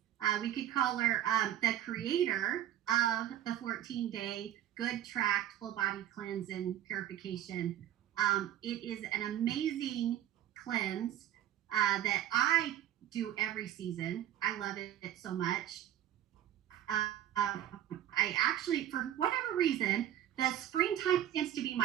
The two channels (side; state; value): left; quieter; 11.8 dB